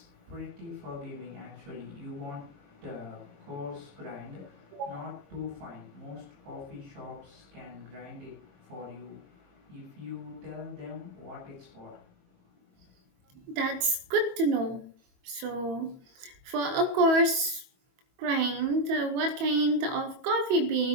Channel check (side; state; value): left; late; 22 ms